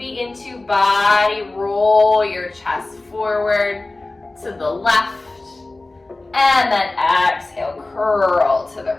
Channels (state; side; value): quieter; right; 3.0 dB